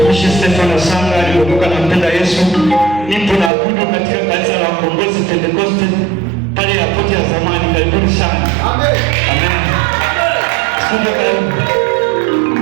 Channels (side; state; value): left; drops out; at 3.5 s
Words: mtumishi Stefano Sanga aliokoka na mpenda Yesu. Nipo na abudu katika kanisa la Ukombozi Pentekoste pale airport ya zamani. Karibuni sana. Amen. Amen. Asante karibu.